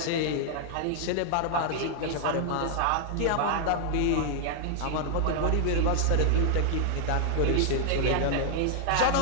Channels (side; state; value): both; different; correlation 0.00